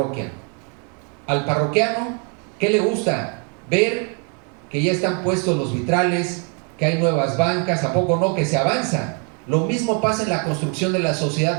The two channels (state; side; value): quieter; left; 37.9 dB